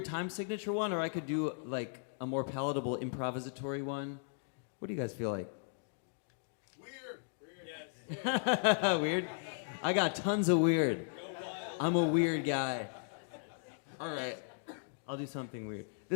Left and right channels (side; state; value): right; silent; digital silence